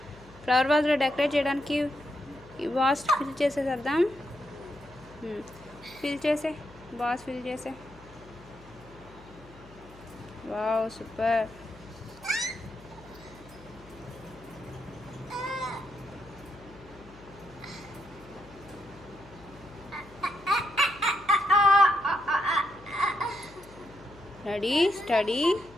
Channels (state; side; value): noise; left; hum, 21 dB below the sound